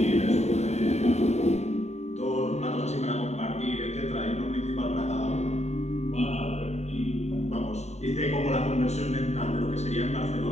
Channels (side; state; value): right; late; 0.32 ms